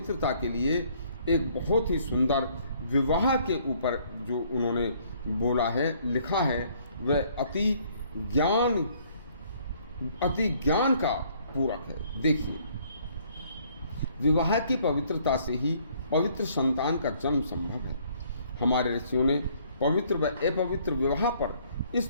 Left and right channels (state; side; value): inverted; both; correlation -0.63